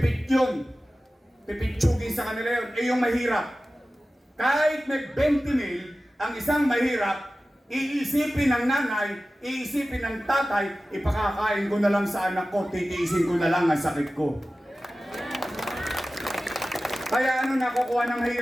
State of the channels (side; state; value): both; normal; correlation 0.96